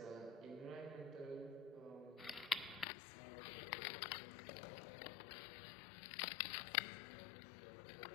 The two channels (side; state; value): right; drops out; at 2.9 s